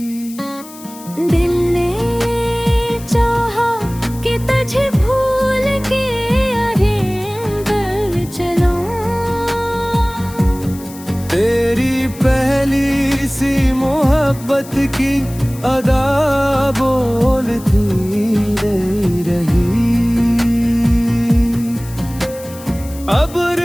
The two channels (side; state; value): left; noise; hiss, 18 dB below the sound